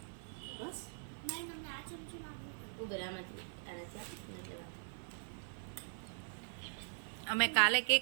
ઉગરામાંથી આનાથી આપીને લેવા. અમે કાલે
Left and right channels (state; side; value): silent; left; 50 dB below the other